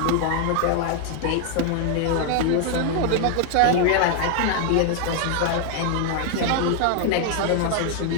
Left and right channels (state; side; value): different; both; correlation 0.00